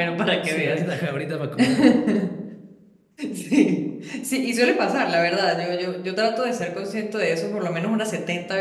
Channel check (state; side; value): identical; both; correlation 1.00